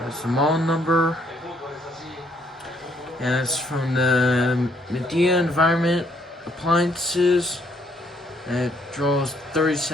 the model number, and it's from the Medea Environment Appliances, and it draws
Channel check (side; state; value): both; normal; correlation 0.68